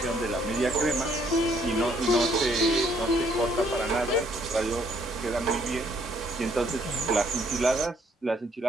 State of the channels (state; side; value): normal; both; correlation 0.66